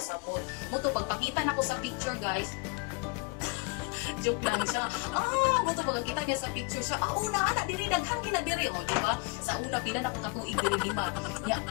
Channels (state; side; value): quieter; right; 28.3 dB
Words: Moto, pagpakita na ko sa picture guys, joke lang siya. Moto pagkita niya sa picture siya, una ana diri daghan gina diri oh, di ba? Sa una pila na ko katuig diri 5. Ya